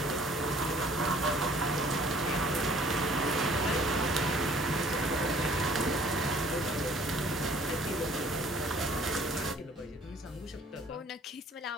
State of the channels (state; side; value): normal; both; correlation 0.55